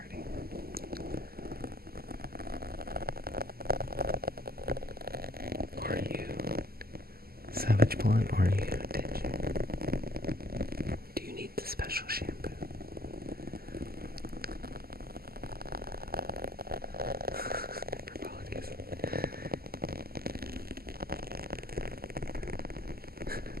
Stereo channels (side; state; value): left; late; 0.45 ms